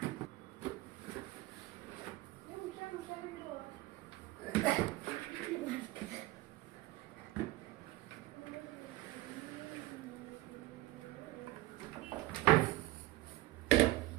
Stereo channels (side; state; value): left; quieter; 18.0 dB